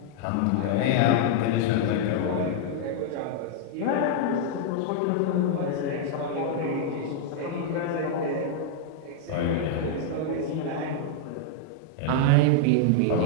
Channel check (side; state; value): both; different; correlation -0.01